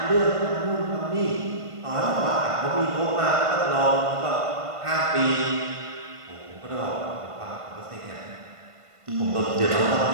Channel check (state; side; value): late; left; 1.5 ms